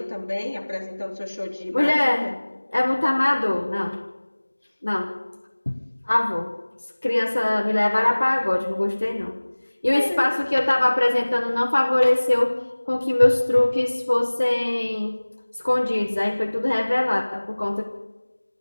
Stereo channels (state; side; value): inverted; both; correlation -1.00